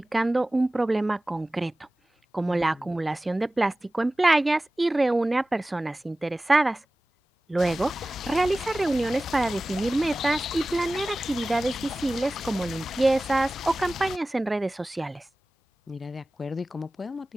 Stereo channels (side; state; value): both; normal; correlation 0.97